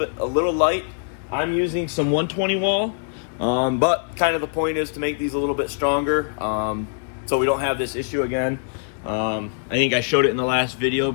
little light. I'm using some 120 wall, but kind of the point is to make these a little bit stronger, so we don't have this issue again. I think I showed it in the last video,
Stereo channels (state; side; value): silent; right; digital silence